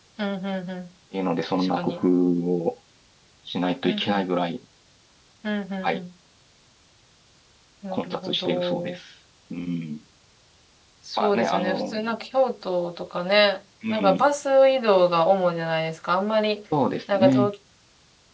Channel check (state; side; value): identical; both; correlation 1.00